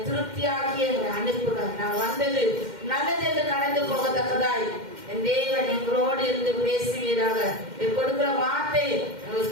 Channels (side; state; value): left; late; 2.1 ms